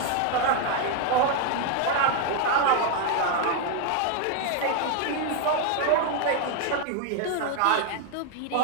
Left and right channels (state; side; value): different; both; correlation 0.01